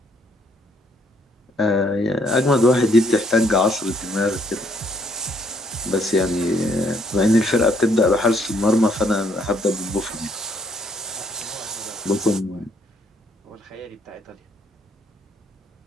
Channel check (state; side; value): normal; both; correlation 0.68